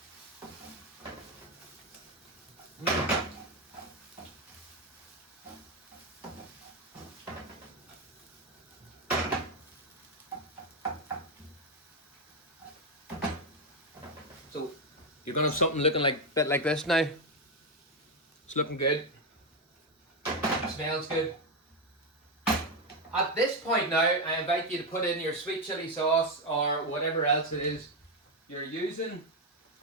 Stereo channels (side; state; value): both; normal; correlation 0.07